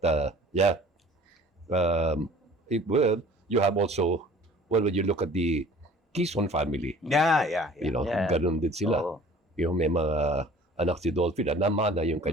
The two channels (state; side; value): normal; both; correlation 0.48